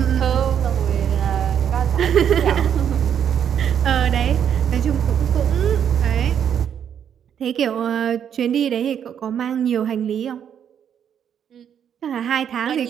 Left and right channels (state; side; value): quieter; left; 8.7 dB